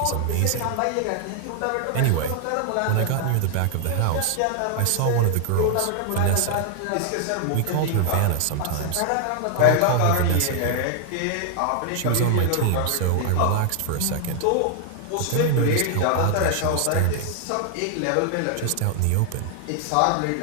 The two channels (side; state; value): both; different; correlation 0.00